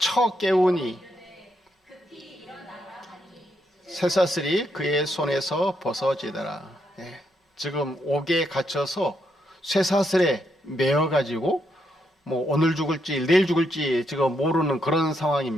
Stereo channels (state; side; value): normal; both; correlation 0.79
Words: 깨우니 쇠사슬이 그의 손에서 벗어지더라. 지금 옥에 갇혀서 쇠사슬에 매어가지고 뭐 오늘 죽을지 내일 죽을지 지금 모르는 그런